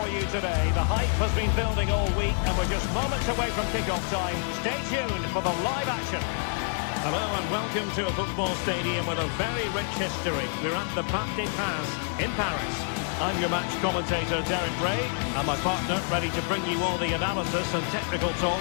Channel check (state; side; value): silent; right; 56 dB below the other